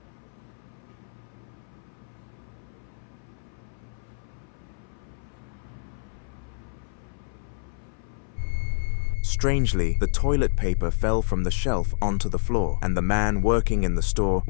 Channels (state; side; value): silent; right; 60 dB below the other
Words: Strangely, the toilet paper fell from the shelf onto the floor, and the man working in the store